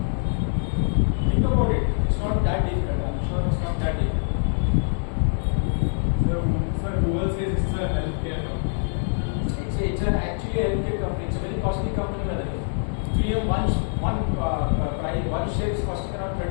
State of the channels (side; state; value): right; silent; digital silence